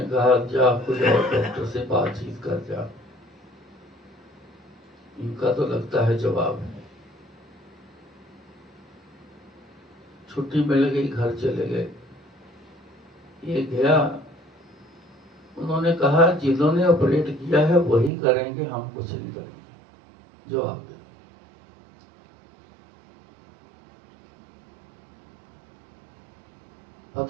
कहा जा खुद और डॉक्टर से बातचीत कर जा, इनका तो लगता है जवाब है। छुट्टी मिल गई, घर चले गए। ये गया, उन्होंने कहा जिन्होंने ऑपरेट किया है वही करेंगे, हम कुछ नहीं करेंगे, जवाब दे।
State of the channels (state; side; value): drops out; left; at 18.1 s